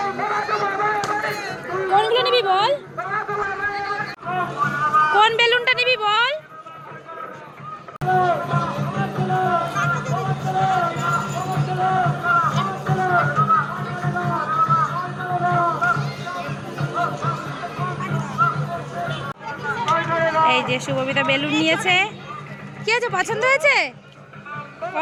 কোনগুলো নিবি বল, কোন বেলুনটা নিবি বল। এই যে শুভবিতা বেলুন নিয়েছে। কি আছে, পছন্দ হয়েছে?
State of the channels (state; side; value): identical; both; correlation 1.00